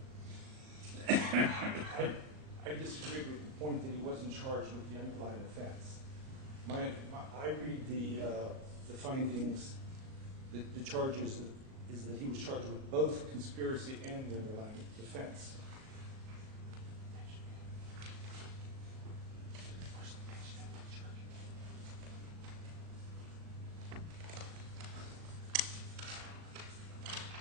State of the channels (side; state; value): left; late; 38 ms